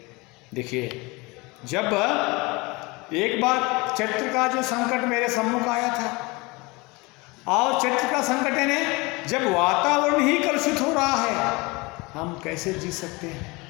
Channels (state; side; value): quieter; right; 25.2 dB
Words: देखिए, जब एक बार चरित्र का जो संकट मेरे सम्मुख आया था और चरित्र का संकट यानी जब वातावरण ही कलुषित हो रहा है, हम कैसे जी सकते हैं।